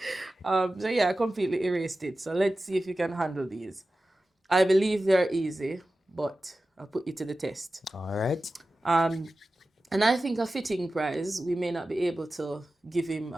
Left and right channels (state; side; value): normal; both; correlation 0.94